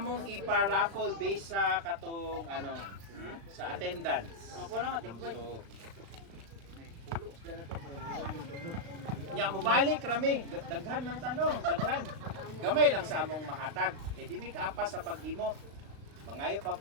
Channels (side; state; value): left; late; 36 ms